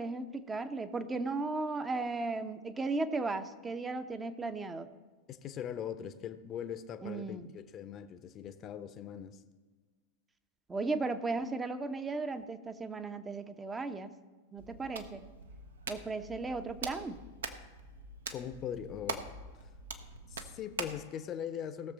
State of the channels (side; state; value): both; normal; correlation 0.61